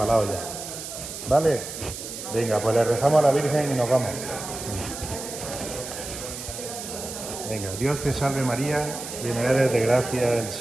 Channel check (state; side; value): noise; right; hiss, 9 dB below the sound